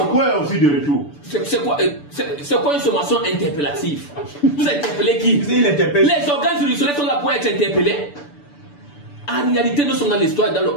aussi de retour? C'est quoi une sommation interpellative? Vous interpellez qui? Les organes juridictionnels sont là pour être interpellés. En réalité, nous sommes dans l'histoire, dans le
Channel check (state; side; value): late; right; 6.9 ms